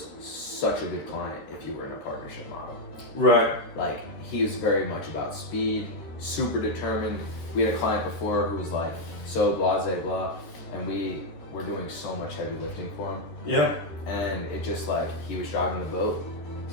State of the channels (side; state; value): right; late; 13 ms